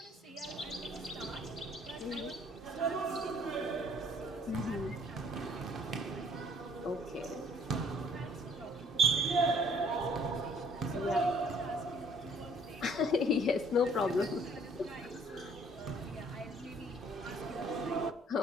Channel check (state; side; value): normal; both; correlation 0.58